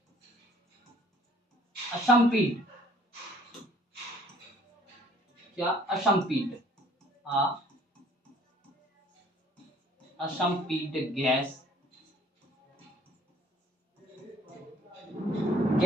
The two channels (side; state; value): both; normal; correlation 0.58